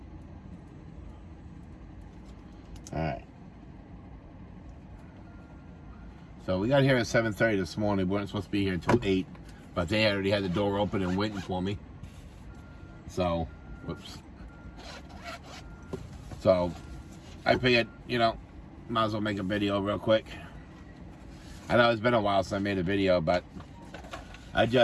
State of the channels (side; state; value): both; identical; correlation 1.00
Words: All right. So we got here at 7:30 this morning. We weren't supposed to be here until 8, but they already had the door open and waiting for me. So, whoops. So, I figured, you know, might as well make a video real quick. I know it's been a while since I made a video, but I